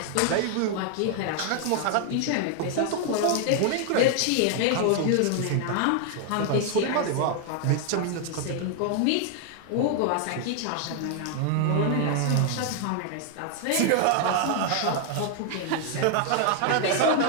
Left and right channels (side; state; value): both; different; correlation 0.00